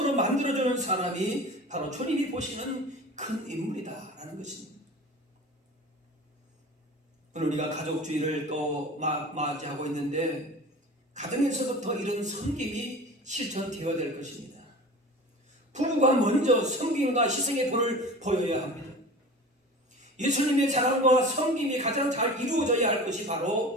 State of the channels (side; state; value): both; normal; correlation 0.37